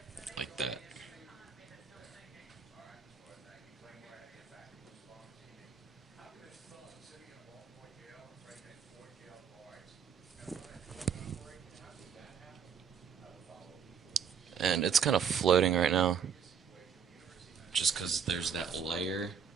Like that. And it's kind of floating right now, just because there's that layer,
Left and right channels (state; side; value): quieter; left; 7.1 dB